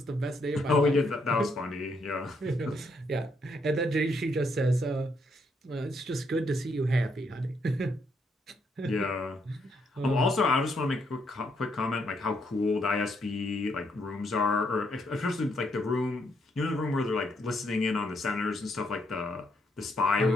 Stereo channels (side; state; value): both; normal; correlation 0.75